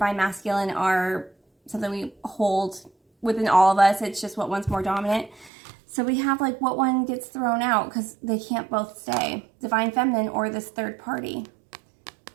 Masculine are something we hold within all of us. It's just what one's more dominant. So we have like what one gets thrown out because they can't both stay. Divine Feminine or this third party.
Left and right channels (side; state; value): left; drops out; at 5.5 s